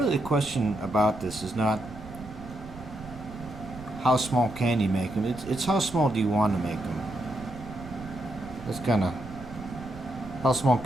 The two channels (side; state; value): right; noise; rumble, 15 dB below the sound